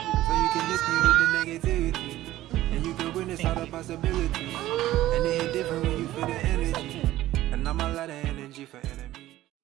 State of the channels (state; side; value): quieter; left; 15.1 dB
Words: So you can lift me with the negativity, and you can witness all the possibilities. And it hit different when you feel the energy. And I'm a lot of energy for enemy.